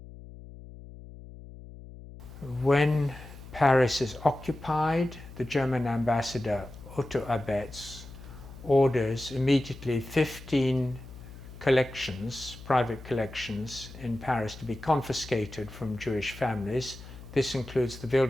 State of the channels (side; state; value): left; noise; hum, 16 dB below the sound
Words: When Paris is occupied, the German ambassador Otto Abetz orders immediately 15 collections, private collections in Paris, to be confiscated from Jewish families. This includes the